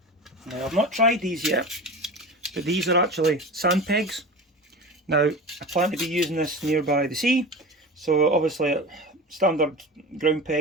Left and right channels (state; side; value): normal; both; correlation 0.31